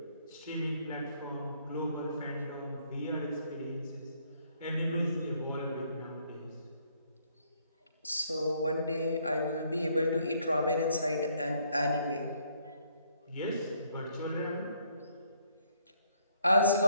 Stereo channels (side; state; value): both; inverted; correlation -0.67